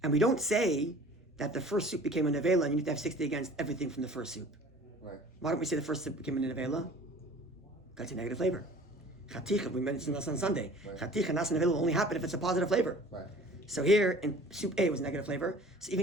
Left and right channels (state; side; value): normal; both; correlation 0.46